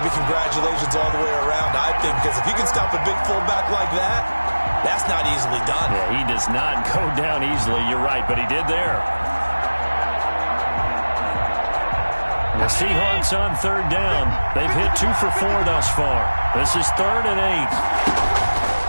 congratulations all the way around, I think, because if you can stop a big fullback like that, that's not easily done. Yeah, he does not go down easily. You're right, but he did there. The Seahawks on 3rd down. They've hit 2 for 4 thus far. This is 3rd and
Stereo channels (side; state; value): both; inverted; correlation -1.00